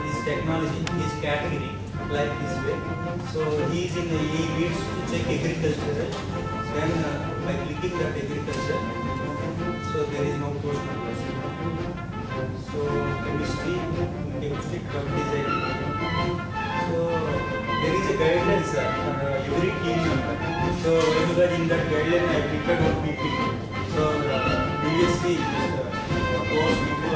technology, his category, like this way. So he needs to check agriculture. Then by clicking that agriculture, so there is no post number. So chemistry, drug design. So there is a guideline, sir, for every team member. So in that guideline, I prepared one PPT. So previously, course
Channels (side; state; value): both; identical; correlation 1.00